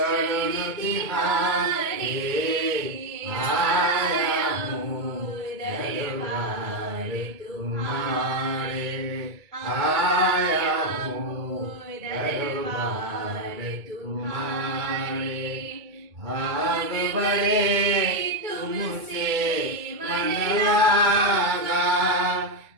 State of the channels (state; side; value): late; left; 2.2 ms